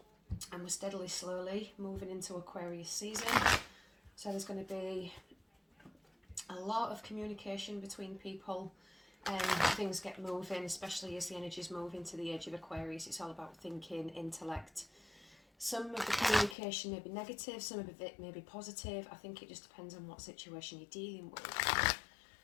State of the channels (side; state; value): right; drops out; at 16.6 s